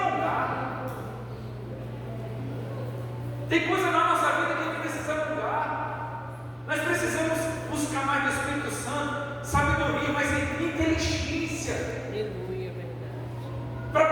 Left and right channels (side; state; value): both; identical; correlation 1.00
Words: Tem coisa na nossa vida que a gente precisa alongar. Nós precisamos buscar mais do Espírito Santo, sabedoria, mas inteligência. Aleluia, verdade. Para